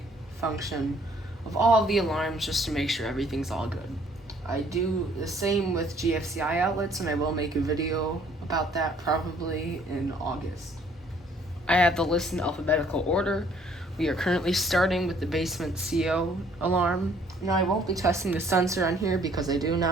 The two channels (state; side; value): normal; both; correlation 0.61